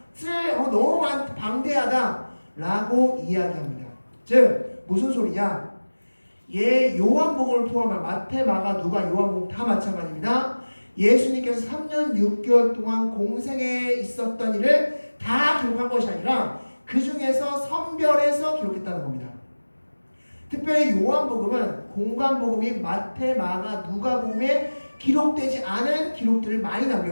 너무 방대하다 라고 이야기합니다. 즉 무슨 소리냐? 요한복음을 포함한 마태, 마가, 누가, 요한복음 다 마찬가지입니다. 예수님께서 3년 6개월 동안 공생에 있었던 일을 다 기록한 것이 아니라 그 중에서 선별해서 기록했다는 겁니다. 특별히 요한복음은 공관복음인 마태, 마가, 누가복음에 기록되지 않은 기록들을 많이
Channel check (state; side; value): inverted; both; correlation -1.00